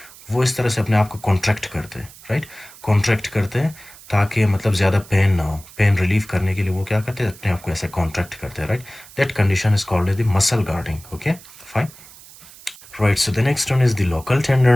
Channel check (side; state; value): right; noise; hiss, 20 dB below the sound